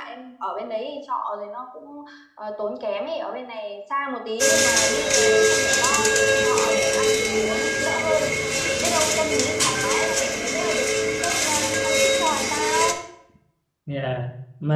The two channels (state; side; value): identical; both; correlation 1.00